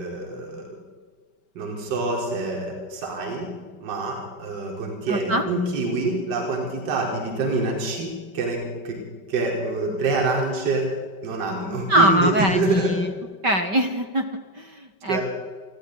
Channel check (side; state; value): left; late; 5.2 ms